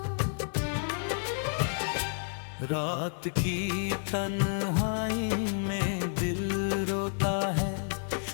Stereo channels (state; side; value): silent; right; digital silence